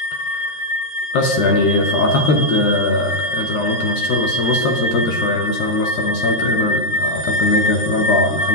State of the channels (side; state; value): right; late; 13 ms